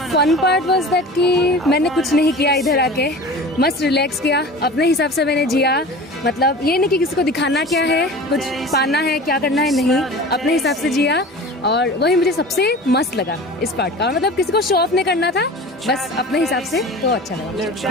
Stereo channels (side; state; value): both; normal; correlation 0.37